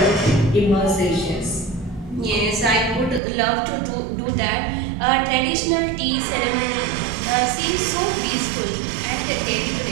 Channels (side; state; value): left; drops out; at 3.2 s